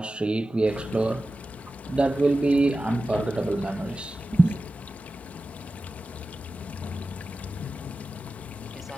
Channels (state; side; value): normal; both; correlation 0.94